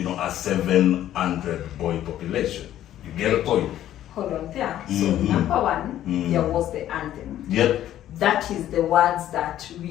700 boy population. You get a point? Hold on there. So number one, there was the anthem. That is the words that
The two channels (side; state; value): right; quieter; 12.3 dB